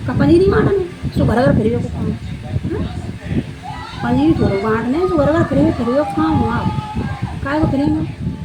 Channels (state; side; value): identical; both; correlation 1.00